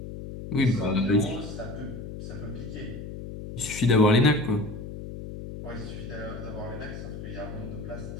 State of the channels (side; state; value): left; noise; hum, 9 dB below the sound